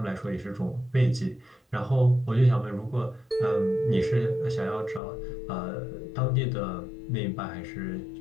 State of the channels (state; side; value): drops out; right; at 5.0 s